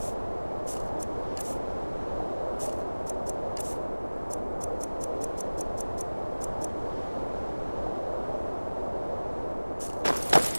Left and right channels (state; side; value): inverted; both; correlation -1.00